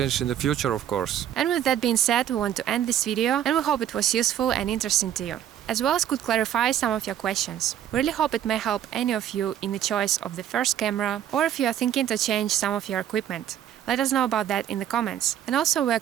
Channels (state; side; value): quieter; left; 10.6 dB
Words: in the future, of course. And with that being said, we want to end this video, and we hope it was useful and interesting to you, as well as could clarify some of your questions. We really hope it may help any of you in the choice of the first camera, or if you are thinking to change some of your equipment. Let us know about that in the comments. And also we are